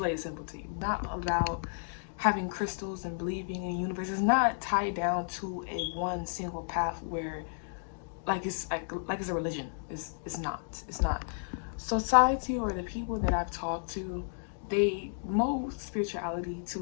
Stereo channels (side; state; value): right; silent; digital silence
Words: it simple to you. Not about having crystals and believing in the universe. It's not tied down to a one single path where like it's a religion. It's not. It's not. Society or the people that I've talked to, they mold spirituality to